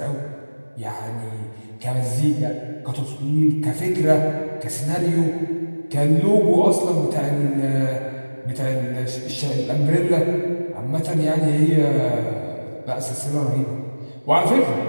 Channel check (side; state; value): both; inverted; correlation -1.00